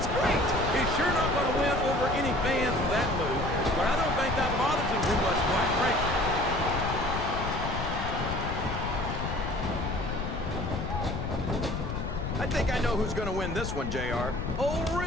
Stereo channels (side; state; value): left; noise; rumble, 4 dB below the sound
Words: great. He's sure not going to win over any fans with that move, but I don't think that bothers him too much, quite frankly. I think I know who's going to win this one, JR. Oh,